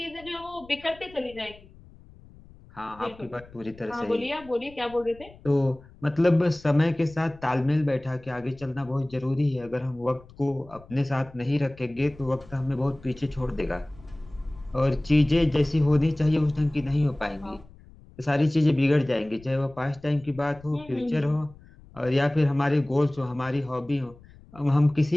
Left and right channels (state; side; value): noise; left; rumble, 23 dB below the sound